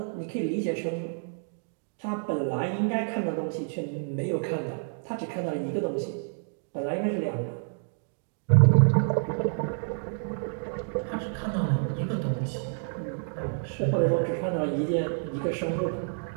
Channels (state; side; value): silent; left; digital silence